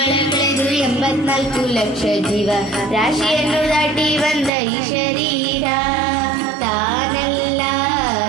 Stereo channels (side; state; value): left; drops out; at 4.5 s